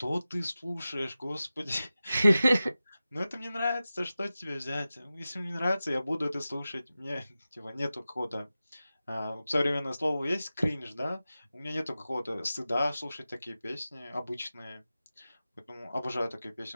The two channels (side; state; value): both; inverted; correlation -0.95